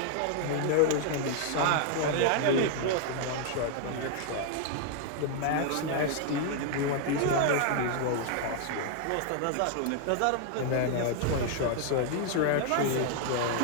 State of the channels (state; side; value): different; both; correlation 0.00